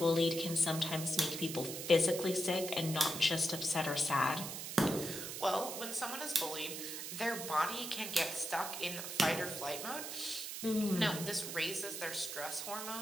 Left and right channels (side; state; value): right; noise; hiss, 6 dB below the sound